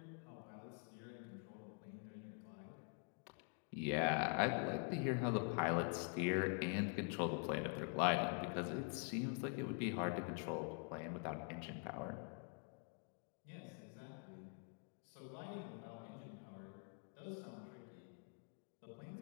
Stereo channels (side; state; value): right; quieter; 38.8 dB